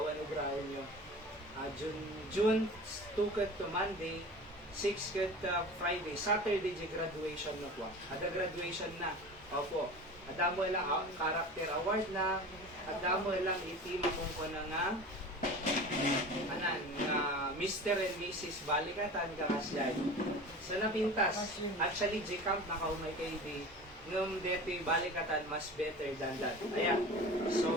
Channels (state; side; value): normal; both; correlation 0.36